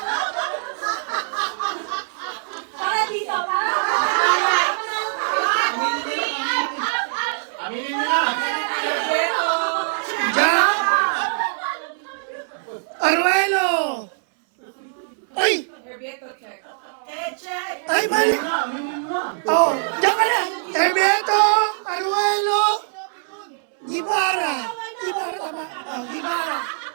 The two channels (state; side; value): silent; left; 64 dB below the other